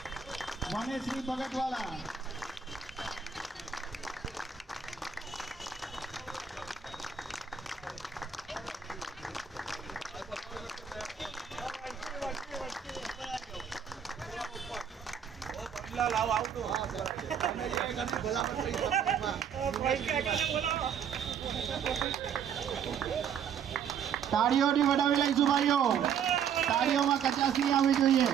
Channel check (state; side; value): quieter; left; 7.6 dB